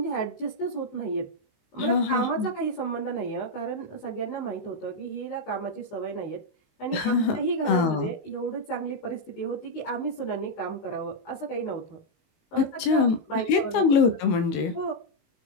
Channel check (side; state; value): right; late; 19 ms